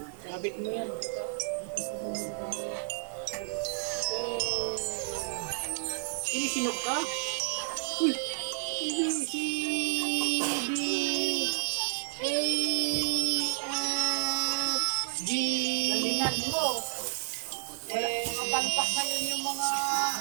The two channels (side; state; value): left; silent; digital silence